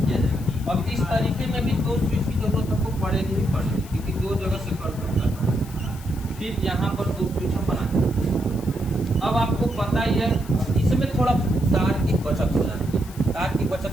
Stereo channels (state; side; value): noise; left; hiss, 20 dB below the sound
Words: जाएगा। अब इस तरीके में भी दो स्विच की जरूरत हमको पड़ेगी ही पड़ेगी, क्योंकि दो जगह से कर सकता है। फिर यहाँ पर दो स्विच हम बनाते। अब आपको पता ही है इसमें थोड़ा तार की बचत हो जाती है। तार की